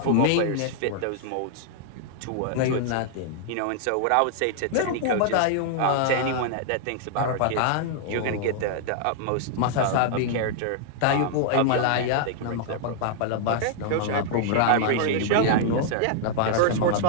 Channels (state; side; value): different; both; correlation -0.01